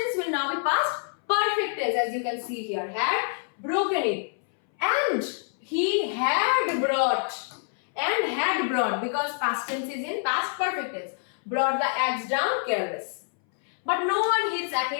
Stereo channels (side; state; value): right; silent; 60 dB below the other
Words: will now be past perfect tense, as you can see here. Had broken it. And he had brought. And had brought, because past tense is in past perfect tense. Brought the axe down careless. But no one hits